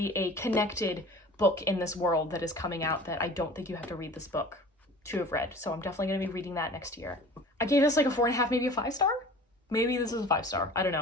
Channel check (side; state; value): both; normal; correlation 0.42